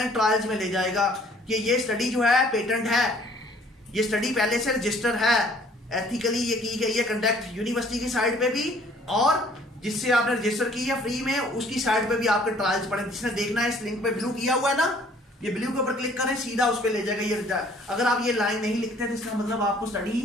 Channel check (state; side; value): normal; both; correlation 0.58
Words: ट्रायल्स में ले जाएगा कि ये स्टडी जो है पेटेंट है, ये स्टडी पहले से रजिस्टर है, एथिकली ये की गई है कंडक्ट यूनिवर्सिटी की साइड पे भी, और जिससे आपने रजिस्टर की है फ्री में उसकी साइड पे भी आपके ट्रायल्स पड़े। जिसने देखना है इस लिंक पे ब्लू किया हुआ है ना, ये ब्लू के ऊपर क्लिक करें सीधा उस पे ले जाएगा। ये अगर आप ये लाइन नहीं लिखते तो इसका मतलब आपको स्टडी